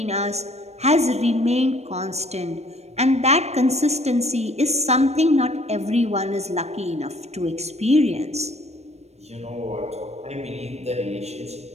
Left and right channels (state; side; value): late; left; 0.31 ms